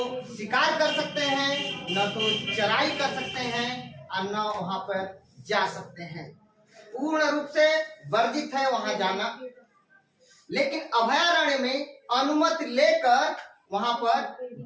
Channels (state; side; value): identical; both; correlation 1.00